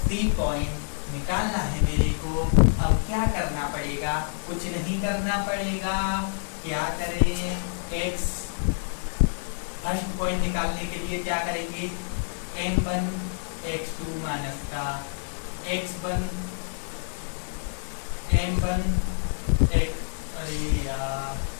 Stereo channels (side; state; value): right; silent; digital silence